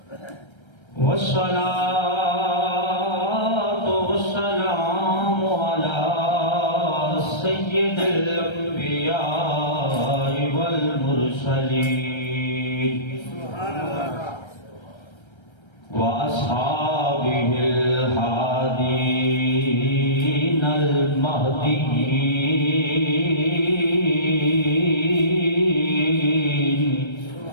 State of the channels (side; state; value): right; late; 1.3 ms